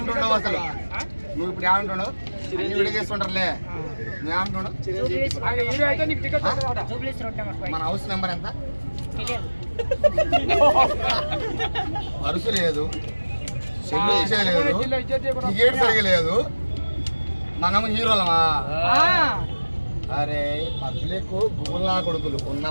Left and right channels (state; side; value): inverted; both; correlation -1.00